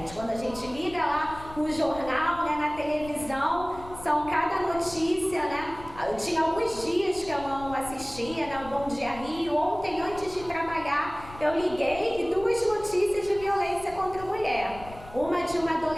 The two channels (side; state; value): left; noise; rumble, 16 dB below the sound